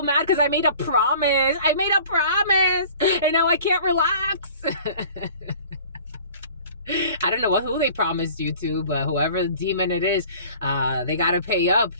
mad because I made a promise. I made a promise. And now I can't relax. I don't know who they promised you to, but whoever the demon it is, they got to pay up.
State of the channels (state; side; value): inverted; both; correlation -0.47